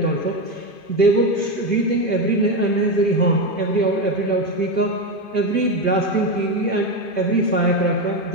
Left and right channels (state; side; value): late; right; 2.5 ms